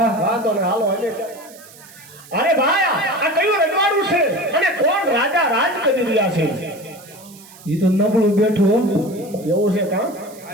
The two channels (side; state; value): right; noise; hiss, 21 dB below the sound